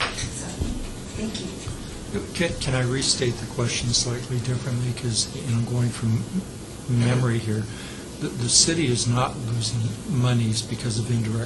so, thank you. Can I restate the question slightly differently? Because, going from memory here, the city is not losing monies because of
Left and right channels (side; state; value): both; identical; correlation 1.00